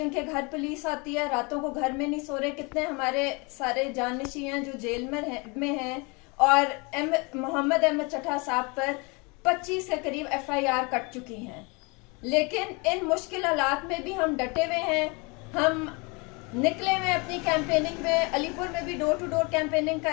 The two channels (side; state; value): right; quieter; 29.4 dB